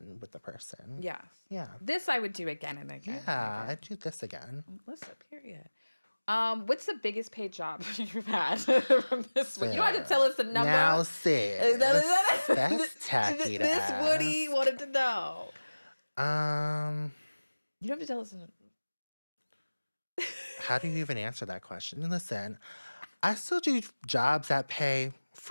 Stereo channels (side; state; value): both; inverted; correlation -1.00